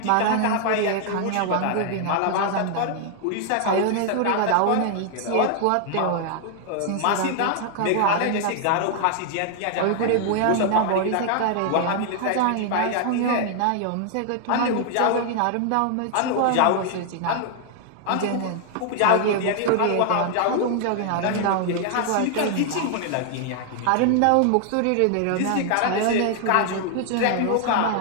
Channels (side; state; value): both; different; correlation 0.00